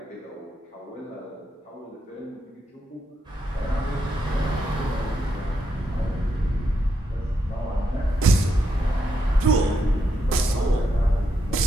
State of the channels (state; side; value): normal; both; correlation 0.81